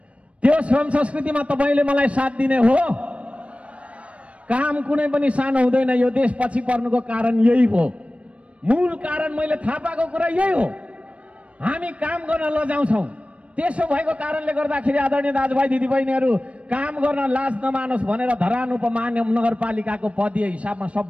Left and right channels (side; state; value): left; late; 0.063 ms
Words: त्यो श्रम संस्कृतिमा तपाईँले मलाई साथ दिने हो। काम कुनै पनि सानो हुँदैन। यो देश पछि पर्नुको कारण यही हो, मूल कारण मैले थाहा पाएको कुरा यही हो। हामी काम गर्न लजाउँछौँ। त्यसो भएको कारणले गर्दाखेरि आदरणीय दाजुभाइ दिदीबहिनीहरू, काम गर्न लाज नमानोस् भनेर धरान उपमहानगर नगरपालिकाको पदीय हिसाबमा